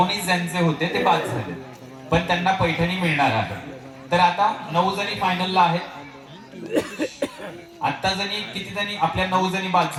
ज्यांचे होते ते बाद झाले, पण त्यांना पैठणी मिळणार आहे. तर आता 9 जणी फायनलला आहेत. आता किती जणी? आपल्या 9 जणी बाद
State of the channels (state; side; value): identical; both; correlation 1.00